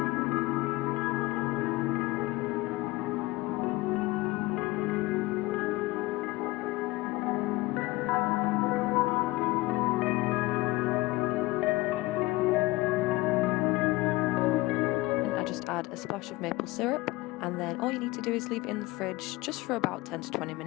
Add a splash of maple syrup, and then all you need to do is leave it in the fridge just for about 10 to 20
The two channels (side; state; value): right; quieter; 20.7 dB